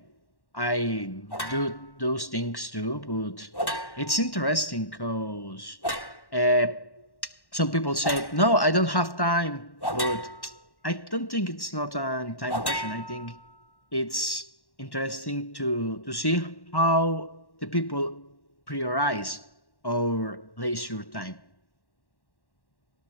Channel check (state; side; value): late; right; 1.1 ms